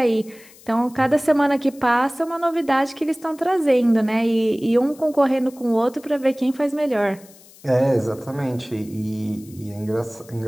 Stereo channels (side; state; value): left; noise; hiss, 24 dB below the sound